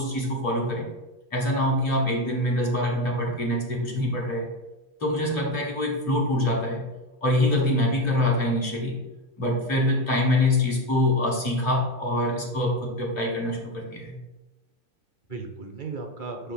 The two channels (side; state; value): right; late; 2.9 ms